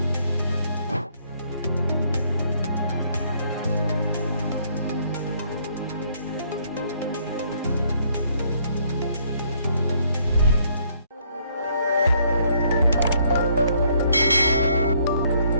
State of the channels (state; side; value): inverted; both; correlation -0.67